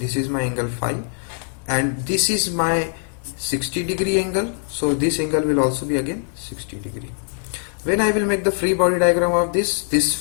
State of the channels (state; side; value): silent; right; 58 dB below the other